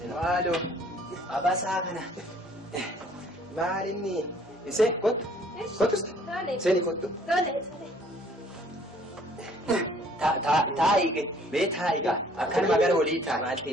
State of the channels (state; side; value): normal; both; correlation 0.58